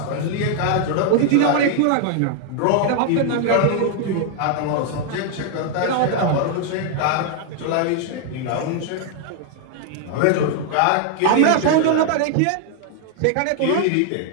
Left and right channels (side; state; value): both; different; correlation 0.00